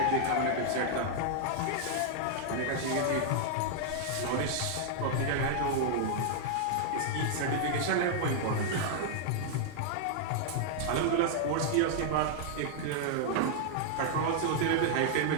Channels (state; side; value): different; both; correlation -0.01